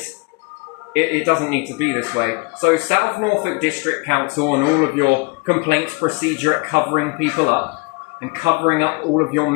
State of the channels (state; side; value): quieter; right; 28.6 dB